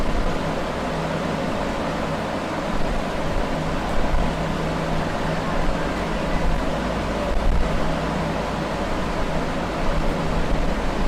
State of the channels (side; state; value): both; identical; correlation 1.00